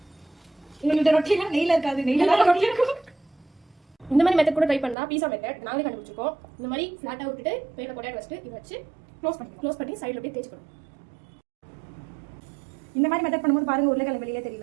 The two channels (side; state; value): left; drops out; at 5.0 s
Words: இந்த ரொட்டிலாம் நெய்ல இருக்காது, நெய்ல ரொட்டி இருக்கும். இந்த மாதிரி மெத்தட் கூட ட்ரை பண்ணலாம். பீஸா மெத்தட் நாங்களே கண்டுபிடிச்சிருக்கோம். இந்த மாதிரி ஃபிளாட்டா விட்டுட்டு பேரில் பொட்டேட்டோ வச்சுட்டு இதை வச்சு க்ளோஸ் பண்ணி சைடில் அப்படியே தேய்ச்சிக்கணும். இந்த மாதிரி மெத்தட் பண்ணும்போது பாருங்க, உருளைக்கிழங்கு வெளியே